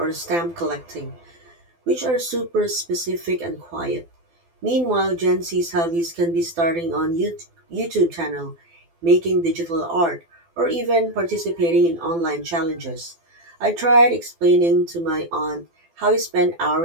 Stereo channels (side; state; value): left; late; 12 ms